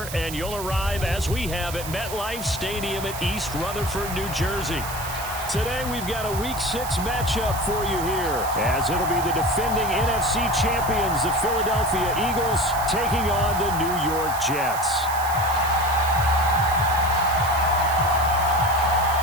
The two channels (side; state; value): right; noise; hiss, 10 dB below the sound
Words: and you'll arrive, as we have, at MetLife Stadium at East Rutherford, New Jersey. Today we've got a Week 6 matchup for you here, as it'll be the defending NFC champions, the Philadelphia Eagles, taking on the New York Jets.